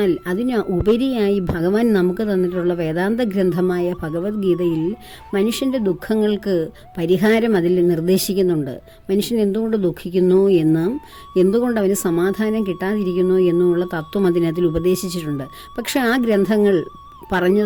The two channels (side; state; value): both; identical; correlation 1.00